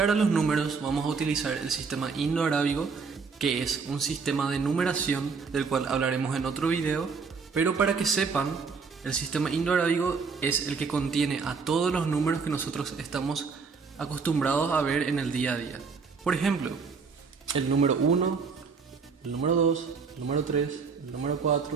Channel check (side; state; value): left; quieter; 5.1 dB